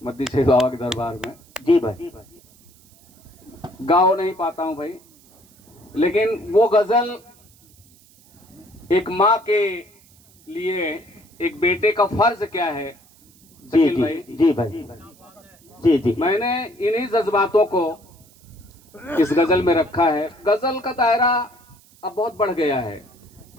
मद्दी शेख बाबा के दरबार में। जी भाई। गाओ नहीं पाता हूँ भाई, लेकिन वो गजल एक माँ के लिए एक बेटे का फर्ज क्या है। जी शकील जी भाई, जी भाई। जी जी। मैंने इन्हीं जज्बातों को इस गजल में रखा है। गजल का दायरा अब बहुत बढ़ गया है।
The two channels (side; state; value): right; noise; hiss, 28 dB below the sound